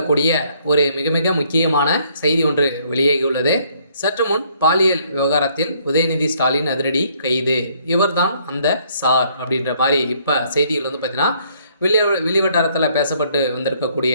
ஒரு மிக மிக முக்கியமான செய்தி ஒன்று வெளியாகியுள்ளது. சற்று முன் பாலியல் விவகாரத்தில் உதயநிதி ஸ்டாலின் அதிரடி கைது. இவர்தான் அந்த சார் அப்படின்ற மாதிரி இப்போ செய்திகள் வந்து பார்த்தீங்கன்னா வெளிவட்டாரத்தில் பேசப்பட்டு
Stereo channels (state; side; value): inverted; both; correlation -0.66